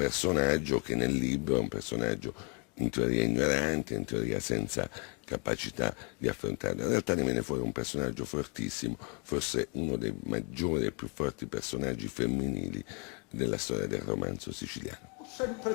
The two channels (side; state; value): right; quieter; 35.8 dB